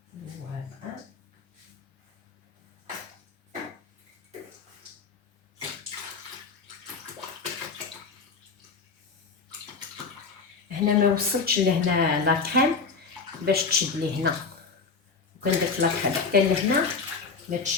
هنا ما وصلتش لهنا لاكريم باش تشد لي هنا، وكان درت لاكريم حتى لهنا ما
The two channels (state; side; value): quieter; right; 4.8 dB